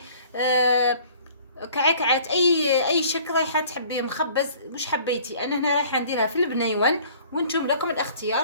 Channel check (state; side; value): inverted; both; correlation -0.52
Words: كعكعات، اي شكل رايحه تحبيه، مخبز مش حبيتي. انا هنا رايحه نديرها في البنيون، وانتم لكم